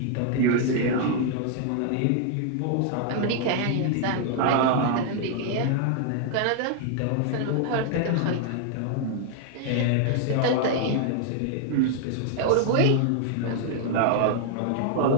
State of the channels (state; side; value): different; both; correlation 0.00